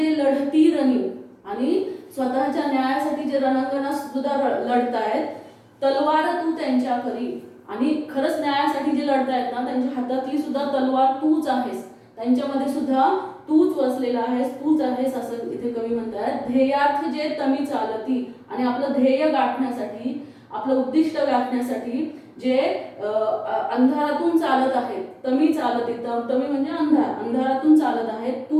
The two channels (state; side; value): identical; both; correlation 1.00